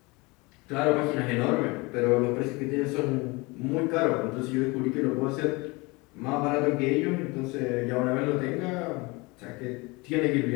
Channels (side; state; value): right; quieter; 25.4 dB